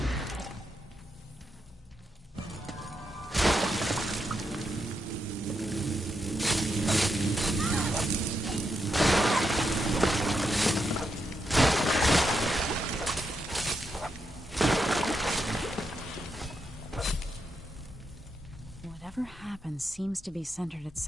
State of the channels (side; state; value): both; normal; correlation 0.83